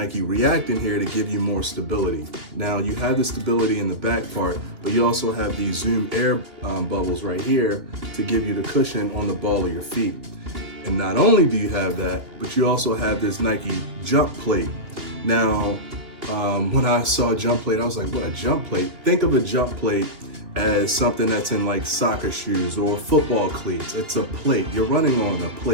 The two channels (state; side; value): late; left; 2.9 ms